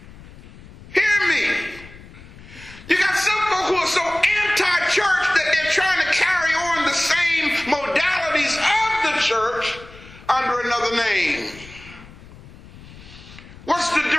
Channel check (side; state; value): left; noise; rumble, 19 dB below the sound